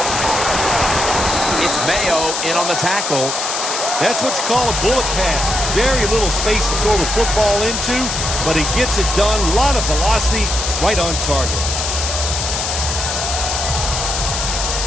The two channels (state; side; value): noise; left; hiss, 2 dB below the sound